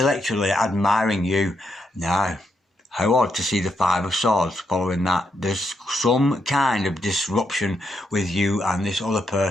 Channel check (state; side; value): normal; both; correlation 0.80